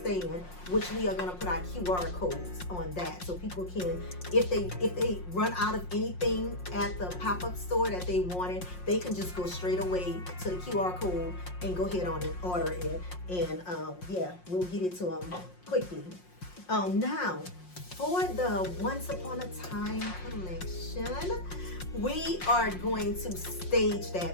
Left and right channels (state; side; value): late; right; 5.6 ms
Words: which we are going to put our QR codes on that, so people can, if they run out of anything at the pop-up store that they wanted, they can just go straight away to the QR code and go ahead on and order it, and yeah, we'll get it to them quickly. Now for the Once Upon a Time collection, we are going to stage